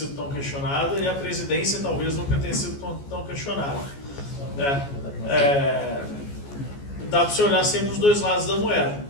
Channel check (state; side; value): late; right; 14 ms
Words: tão questionada e a presidência talvez nunca tenha sido tão questionada. Dá para você olhar sempre os dois lados da moeda.